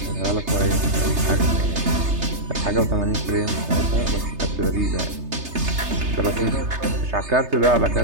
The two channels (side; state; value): left; late; 3.3 ms